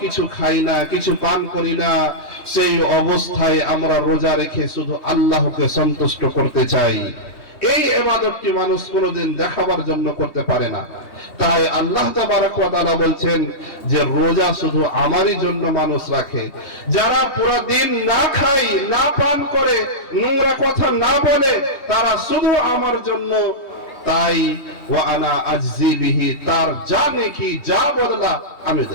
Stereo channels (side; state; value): right; late; 3.2 ms